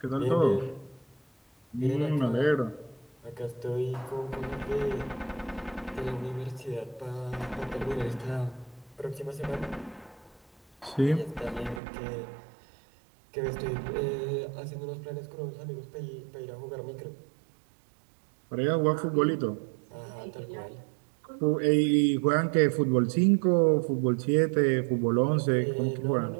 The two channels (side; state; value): left; drops out; at 11.8 s